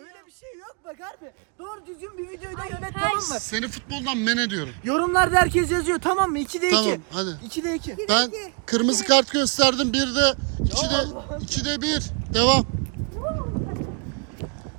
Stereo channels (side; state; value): left; quieter; 35.3 dB